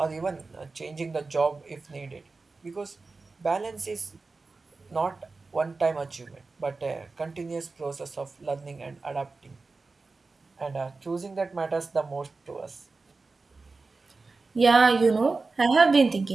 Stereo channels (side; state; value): left; quieter; 3.9 dB